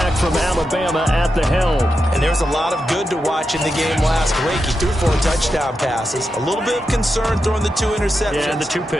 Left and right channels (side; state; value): both; normal; correlation 0.88